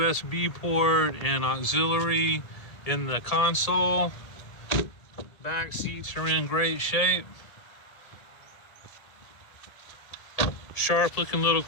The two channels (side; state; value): right; late; 1.8 ms